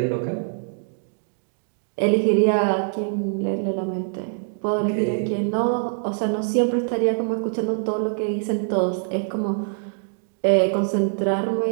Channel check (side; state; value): left; silent; digital silence